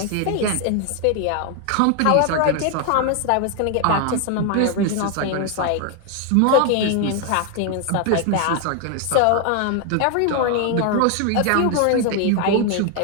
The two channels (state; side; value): different; both; correlation 0.00